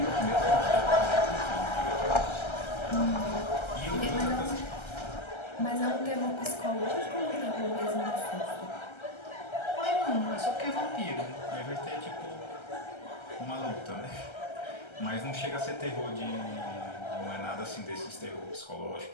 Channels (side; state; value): right; late; 1.3 ms